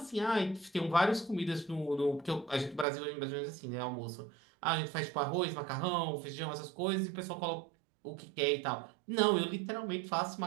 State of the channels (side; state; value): left; drops out; at 2.9 s